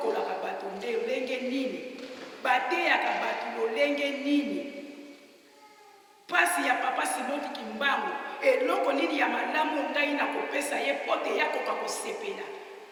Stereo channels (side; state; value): both; identical; correlation 1.00